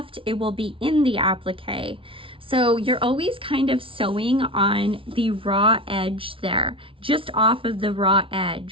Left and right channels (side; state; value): left; late; 0.25 ms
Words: it will be in the applique. So you're always kind of sewing on the raw edge there, just off of the raw